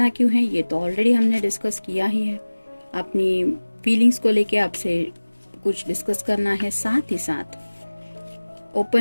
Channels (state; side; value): inverted; both; correlation -1.00